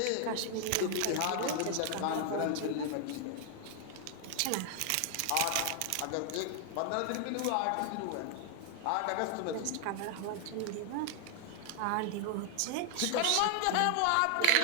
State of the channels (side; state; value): both; different; correlation 0.00